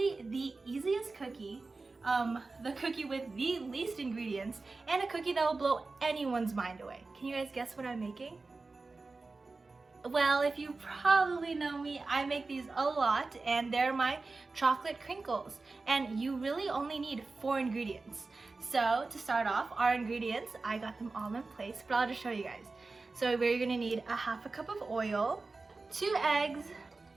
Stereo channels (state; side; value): quieter; left; 3.7 dB